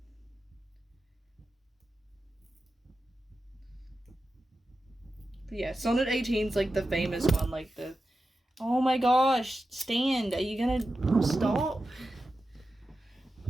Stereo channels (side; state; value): both; normal; correlation 0.91